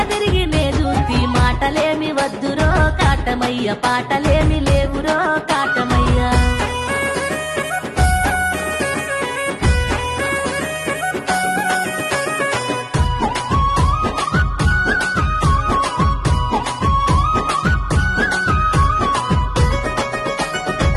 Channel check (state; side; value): identical; both; correlation 1.00